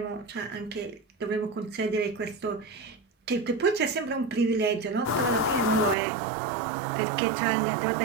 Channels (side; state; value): left; drops out; at 6.0 s